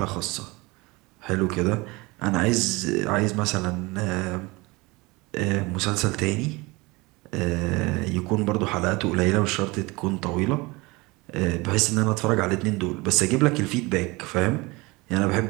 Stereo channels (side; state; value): left; quieter; 23.9 dB